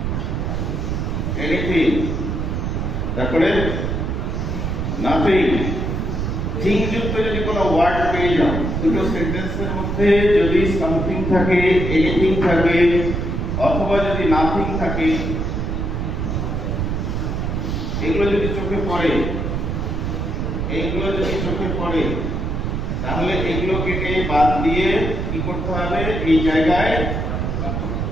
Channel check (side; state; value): right; noise; rumble, 1 dB below the sound